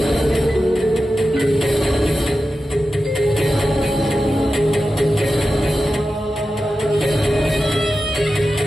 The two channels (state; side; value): normal; both; correlation 0.92